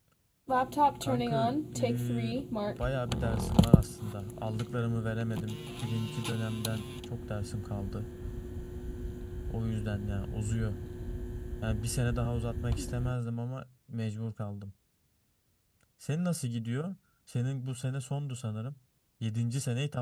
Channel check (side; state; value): both; identical; correlation 1.00